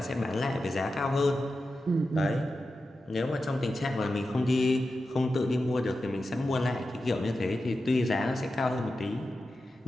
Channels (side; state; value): both; normal; correlation 0.91